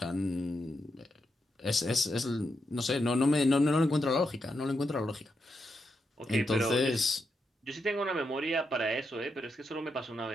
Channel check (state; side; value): normal; both; correlation 0.84